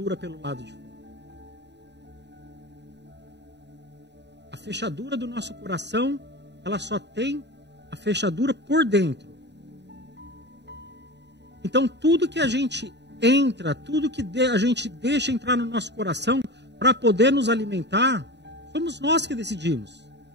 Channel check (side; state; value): left; late; 0.50 ms